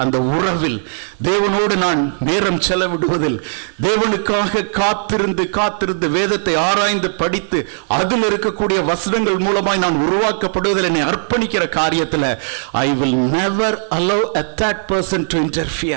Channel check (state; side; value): silent; left; digital silence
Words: அந்த உறவில், தேவனோடு நான் நேரம் செலவிடுவதில், தேவனுக்காக காத்திருந்து வேதத்தை ஆராய்ந்து படித்து அதில் இருக்கக்கூடிய வசனங்கள் மூலமாய் நான் உருவாக்கப்படுவதில் என்னை அர்ப்பணிக்கிற காரியத்தில் I will never allow a third person to